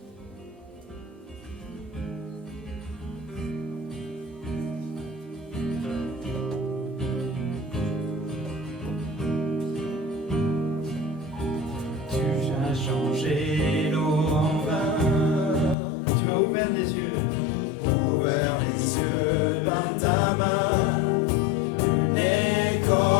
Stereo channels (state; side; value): drops out; right; at 15.8 s